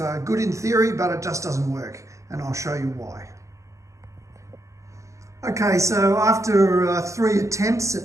good in theory, but it just doesn't work, and I'll show you why. Okay, so after 3 attempts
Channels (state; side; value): late; left; 0.15 ms